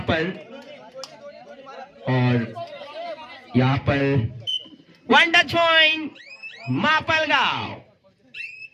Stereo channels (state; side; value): identical; both; correlation 1.00